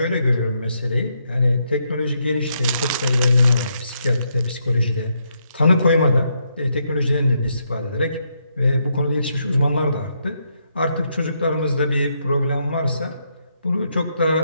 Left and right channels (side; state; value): both; inverted; correlation -0.78